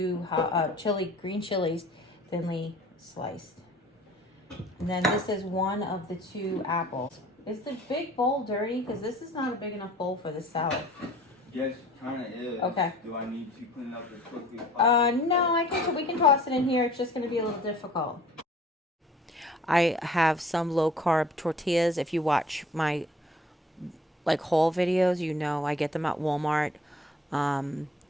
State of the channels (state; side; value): normal; both; correlation 0.51